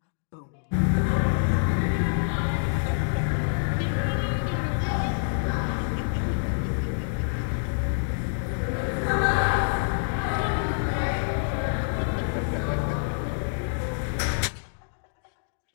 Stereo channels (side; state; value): right; silent; digital silence